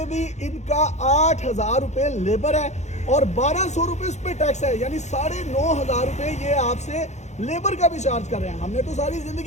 भी इनका 8 हज़ार रुपये लेबर है और 1200 रुपये उस पर टैक्स है। यानी 9.5 हज़ार रुपये ये आपसे लेबर का भी चार्ज कर रहे हैं। हमने तो सारी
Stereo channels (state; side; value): late; right; 0.33 ms